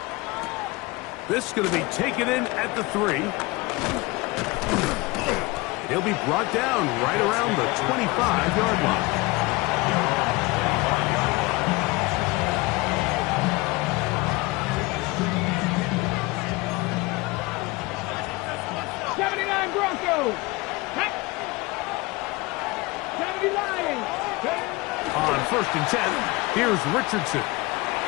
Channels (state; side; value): quieter; right; 23.3 dB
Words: This is going to be taken in at the 3. And he'll be brought down right around the 25-yard line. Broncos. 70 Lions. On 1st and 10, here's Richardson.